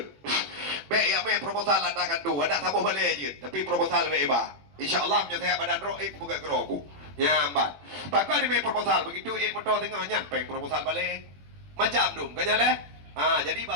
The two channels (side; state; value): left; late; 21 ms